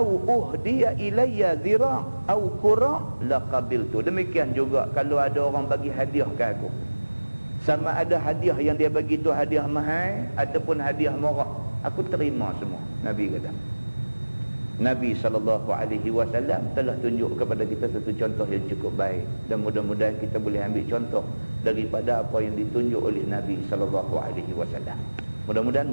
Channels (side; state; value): both; inverted; correlation -1.00